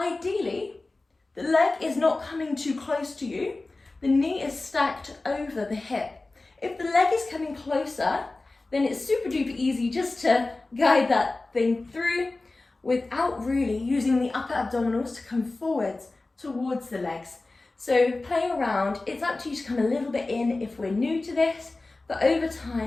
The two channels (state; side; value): quieter; right; 3.2 dB